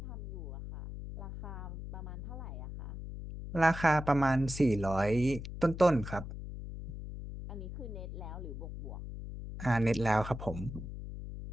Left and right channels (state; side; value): noise; left; hum, 8 dB below the sound